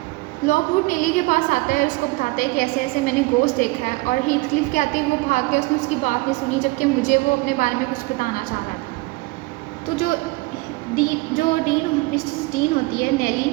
लॉकवुड नेली के पास आता है, उसको बताता है कि ऐसे ऐसे मैंने गोस्ट देखा है, और हीथक्लिफ के आते ही वो भाग के उसने उसकी बात नहीं सुनी, जबकि मुझे वो अपने बारे में कुछ बताना चाह रहा था। तो जो मिसेस डीन होती है नेली,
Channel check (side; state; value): left; quieter; 23.7 dB